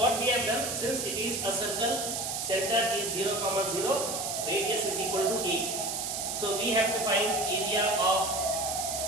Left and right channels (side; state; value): right; noise; hiss, 3 dB below the sound